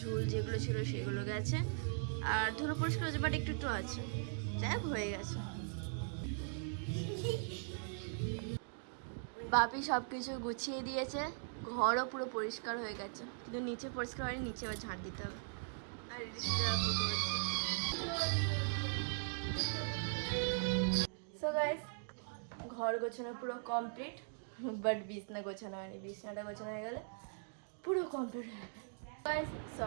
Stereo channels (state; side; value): silent; left; digital silence